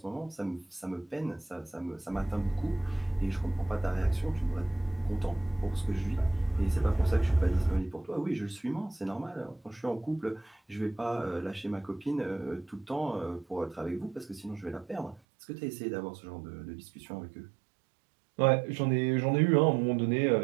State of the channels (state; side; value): drops out; left; at 15.2 s